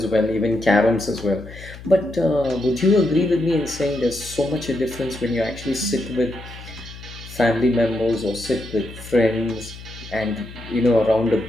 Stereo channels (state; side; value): noise; left; hum, 15 dB below the sound